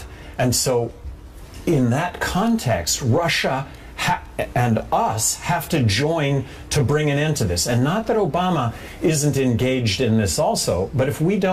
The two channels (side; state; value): both; identical; correlation 1.00